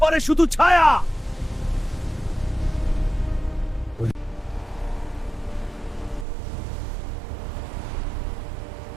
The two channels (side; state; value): left; drops out; at 6.2 s